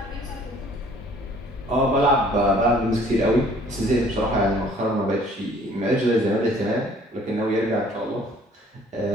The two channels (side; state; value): both; normal; correlation 0.56